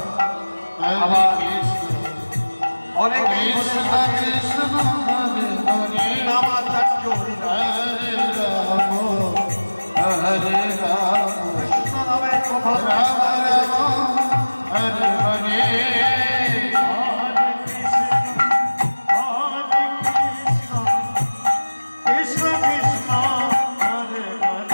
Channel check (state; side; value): inverted; both; correlation -1.00